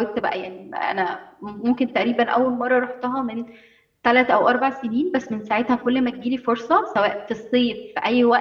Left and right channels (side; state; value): both; identical; correlation 1.00